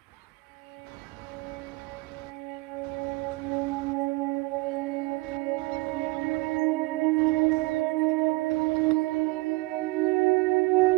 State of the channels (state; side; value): quieter; left; 23.5 dB